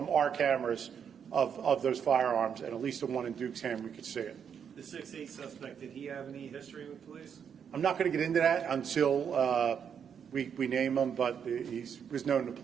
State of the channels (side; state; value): left; quieter; 7.6 dB